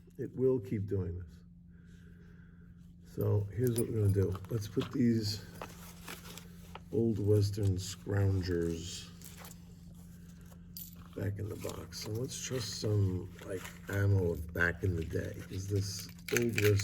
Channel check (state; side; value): identical; both; correlation 1.00